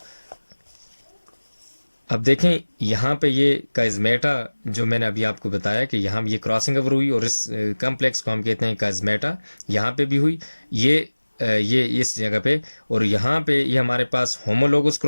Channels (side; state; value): both; inverted; correlation -1.00